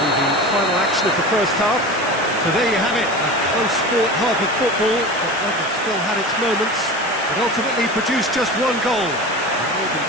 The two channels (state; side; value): noise; left; hiss, 14 dB below the sound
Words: be the final action of the first half. So there you have it, a close sport half of football, but that still had its moments. It ultimately produced just one goal. A more than